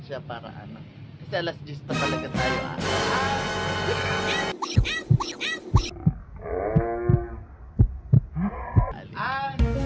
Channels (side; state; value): both; identical; correlation 1.00